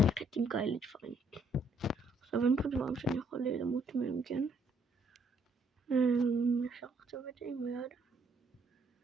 עם כאלה דברים? עכשיו אין פה דברים שאני יכול למות מהם, כן? אפשר לחצוב את זה עם היד.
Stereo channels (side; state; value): both; normal; correlation 0.68